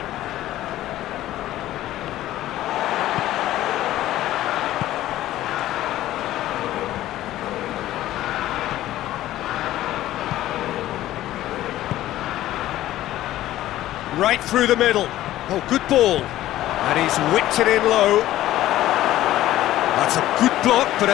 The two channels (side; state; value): right; quieter; 14.4 dB